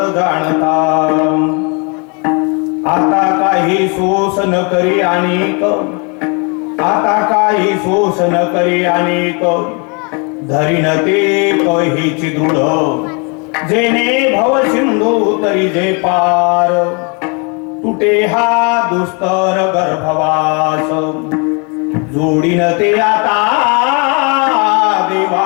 जाणता. आता काही सोस न करी अनेक आता काही सोस न करी अनेक धरीन ते कहीची दृढ जेने भव सिंधू तरी जे पार तुटे हा दुस्तर गर्भवास जोडीन ते आता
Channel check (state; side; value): quieter; right; 33.9 dB